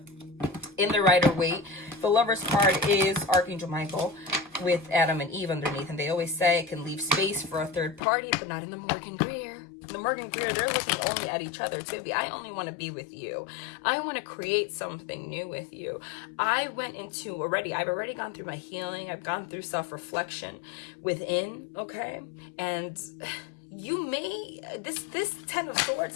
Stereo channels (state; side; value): drops out; right; at 8.0 s